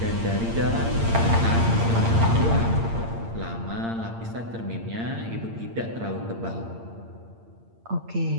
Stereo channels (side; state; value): left; late; 8.8 ms